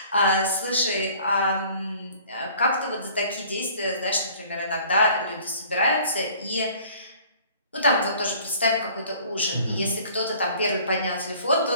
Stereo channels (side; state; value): both; inverted; correlation -0.52